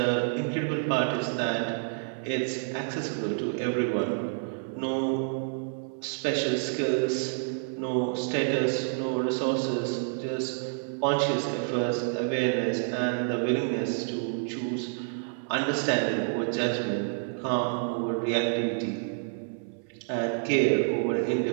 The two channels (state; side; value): silent; left; 59 dB below the other